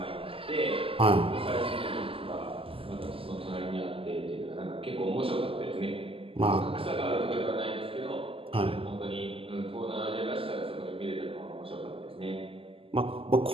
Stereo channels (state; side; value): late; left; 0.26 ms